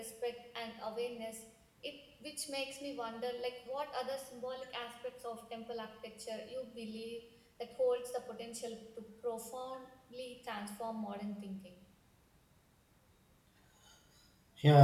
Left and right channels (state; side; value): identical; both; correlation 1.00